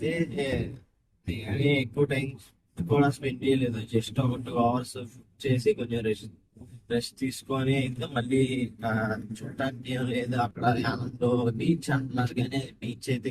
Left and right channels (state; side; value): identical; both; correlation 1.00